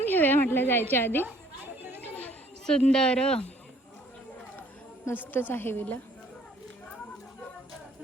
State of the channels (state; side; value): normal; both; correlation 0.59